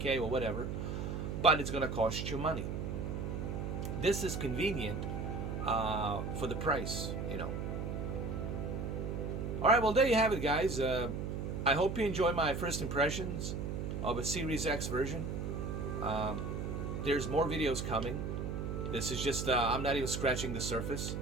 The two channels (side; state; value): right; noise; hum, 3 dB below the sound